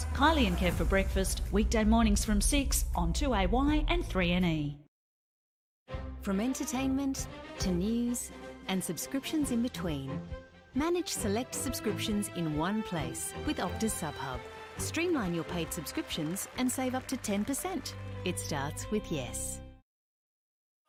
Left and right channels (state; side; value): identical; both; correlation 1.00